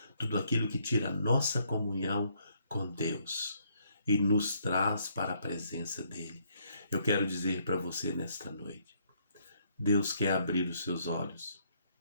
tudo aquilo que tira a nossa comunhão com Deus e nos traz para a presença dele. Eu quero dizer para você nesta noite, Deus quer abrir os seus olhos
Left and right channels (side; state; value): both; inverted; correlation -0.70